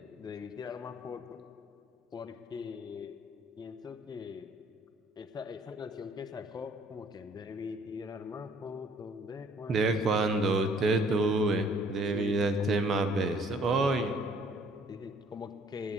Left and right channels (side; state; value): both; normal; correlation 0.59